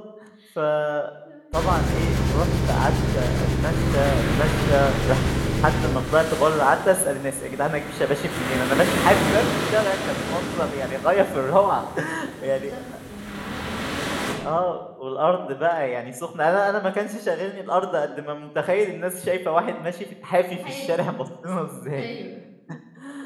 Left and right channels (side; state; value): both; identical; correlation 1.00